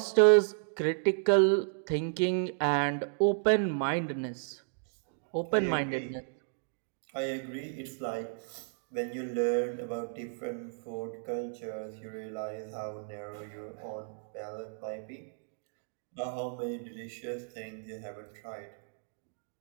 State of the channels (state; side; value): silent; left; digital silence